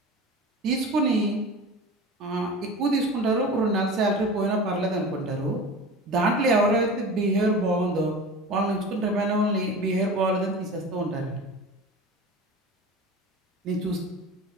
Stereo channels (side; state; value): both; normal; correlation 0.34